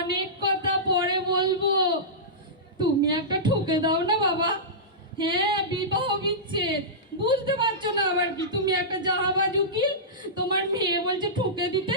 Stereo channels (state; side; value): normal; both; correlation -0.16